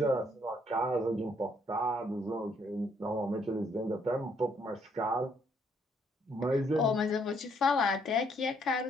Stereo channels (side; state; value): both; normal; correlation 0.69